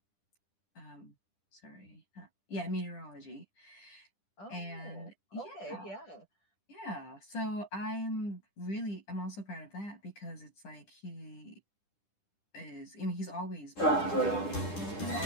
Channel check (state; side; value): late; right; 10 ms